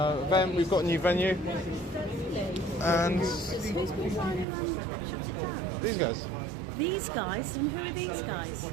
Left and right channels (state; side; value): drops out; left; at 4.5 s